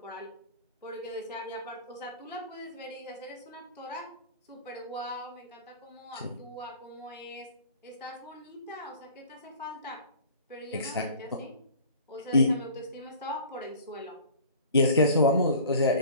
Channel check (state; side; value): inverted; both; correlation -0.45